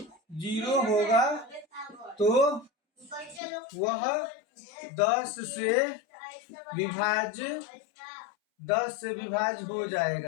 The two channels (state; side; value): drops out; right; at 3.4 s